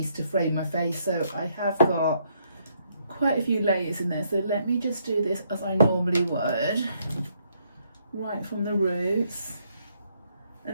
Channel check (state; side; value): inverted; both; correlation -0.72